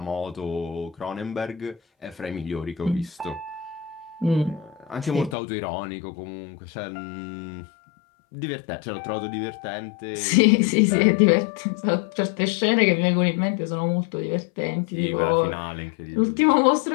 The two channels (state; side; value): drops out; right; at 5.4 s